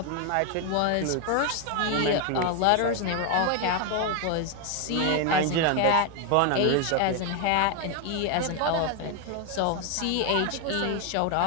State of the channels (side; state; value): both; different; correlation 0.01